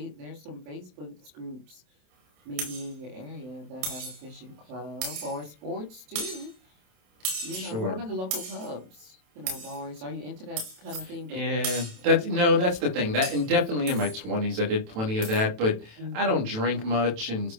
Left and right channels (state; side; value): late; left; 27 ms